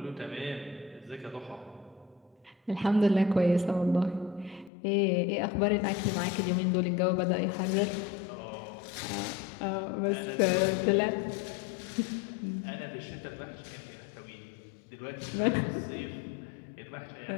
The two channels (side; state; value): right; drops out; at 4.7 s